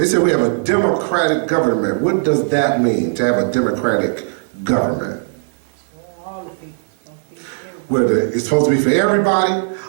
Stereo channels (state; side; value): silent; left; 65 dB below the other